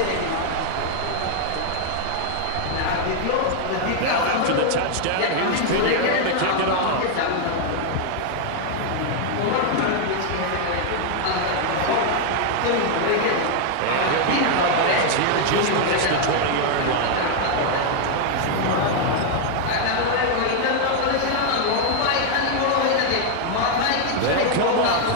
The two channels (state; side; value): different; both; correlation 0.00